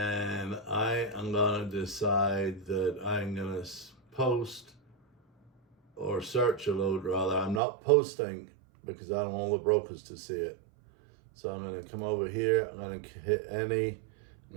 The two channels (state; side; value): drops out; left; at 7.6 s